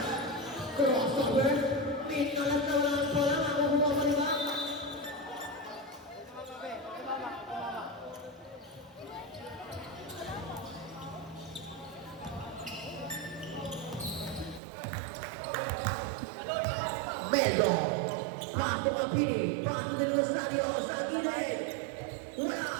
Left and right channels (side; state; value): left; drops out; at 14.6 s